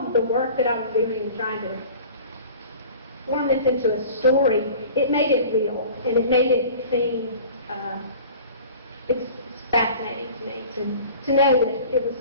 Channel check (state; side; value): inverted; both; correlation -0.43